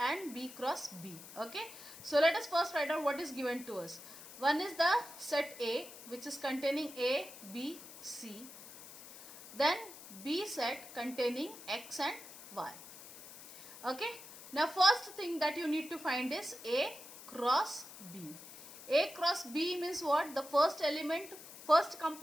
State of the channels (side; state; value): left; noise; hiss, 15 dB below the sound